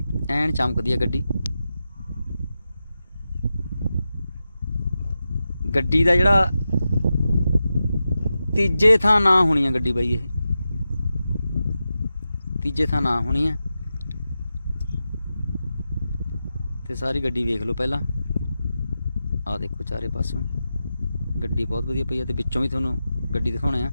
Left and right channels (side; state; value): both; inverted; correlation -0.91